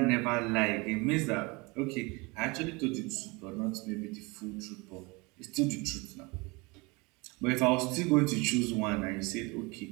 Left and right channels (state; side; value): quieter; left; 26.5 dB